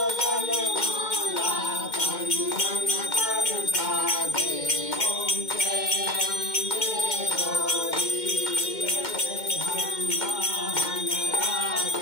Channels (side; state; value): right; late; 2.1 ms